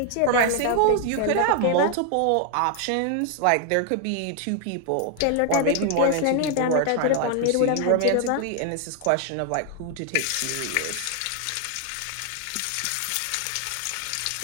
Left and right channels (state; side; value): different; both; correlation 0.00